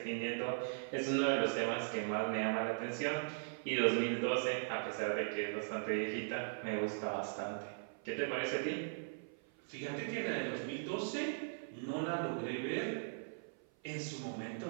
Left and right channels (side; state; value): left; silent; 52 dB below the other